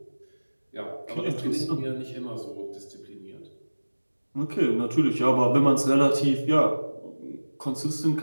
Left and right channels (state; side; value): inverted; both; correlation -1.00